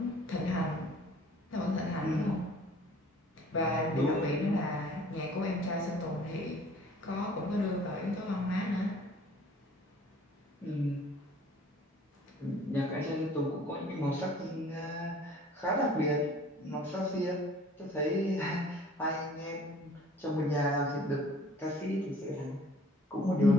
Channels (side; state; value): both; normal; correlation 0.51